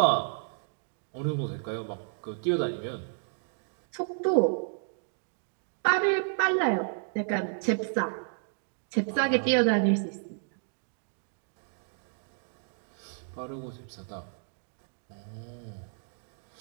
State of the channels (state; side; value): silent; left; digital silence